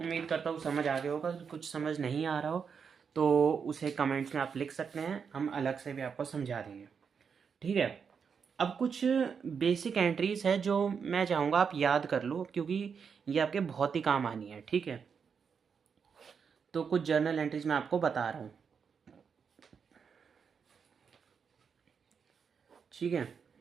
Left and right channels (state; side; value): quieter; left; 6.3 dB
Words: करता हूँ समझ आ गया होगा। कुछ समझ नहीं आ रहा हो तो उसे कमेंट्स में आप लिख सकते हैं, हम अलग से भी आपको समझा देंगे, ठीक है। अब कुछ बेसिक एंट्रीज है जो मैं चाहूँगा आप याद कर लो, क्योंकि ये आपके बहुत ही काम आनी है, ठीक है। तो कुछ जर्नल एंट्रीज मैं आपको बता रहा हूँ, ठीक है।